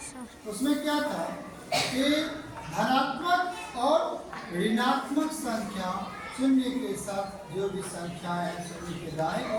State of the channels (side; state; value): both; identical; correlation 1.00